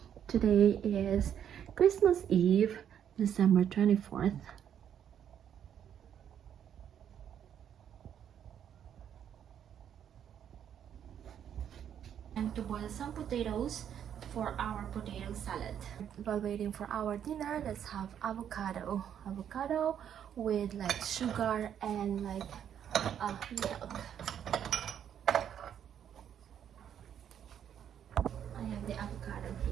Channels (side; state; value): left; quieter; 9.2 dB